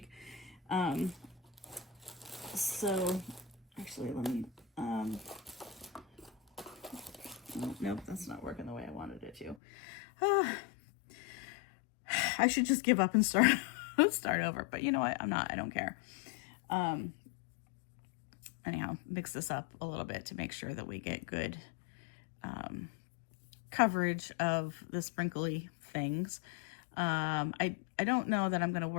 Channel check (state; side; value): drops out; right; at 9.6 s